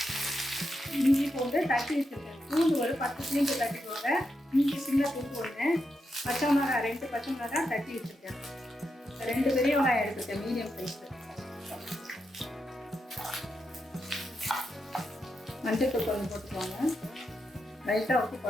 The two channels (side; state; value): both; normal; correlation 0.85